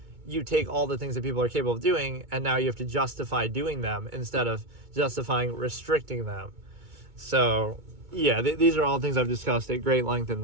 You take all the things that people are capable of doing, and now you have to justify doing them instead of justifying restricting them. So, yeah, these are all things I've discussed at great length in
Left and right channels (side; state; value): left; late; 2.2 ms